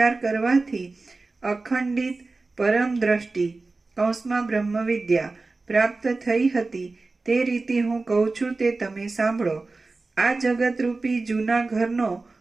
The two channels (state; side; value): quieter; left; 3.6 dB